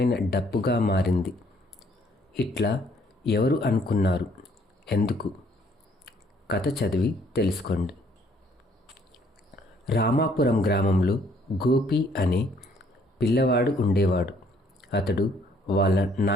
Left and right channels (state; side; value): normal; both; correlation 0.64